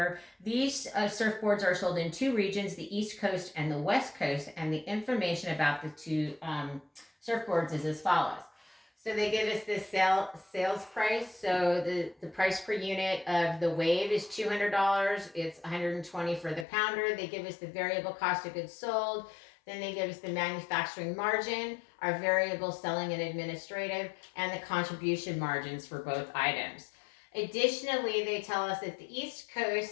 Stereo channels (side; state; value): right; drops out; at 16.7 s